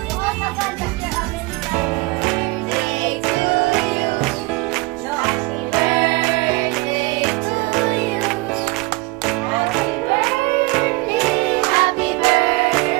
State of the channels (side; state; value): left; quieter; 23.3 dB